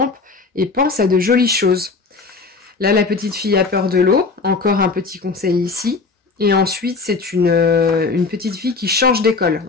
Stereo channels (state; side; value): quieter; right; 4.3 dB